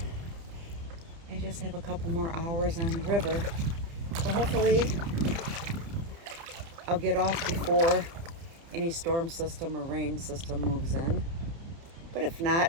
I just have a couple more hours on the river. So hopefully I'll get off before any storm system or rain system moves in. But if not,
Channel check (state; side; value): late; left; 30 ms